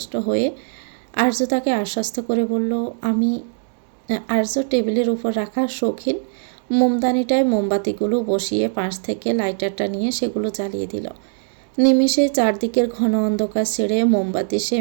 হয়ে আর্য তাকে আশ্বস্ত করে বলল, আর্য টেবিলের উপর রাখা শৌখিন মোমদানিটায় মোমবাতিগুলো বসিয়ে পাশ থেকে লাইটারটা নিয়ে সেগুলো জ্বালিয়ে দিল। নিমেষে চারদিকের ঘন অন্ধকার ছেড়ে মোমবাতি সে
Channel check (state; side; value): silent; left; digital silence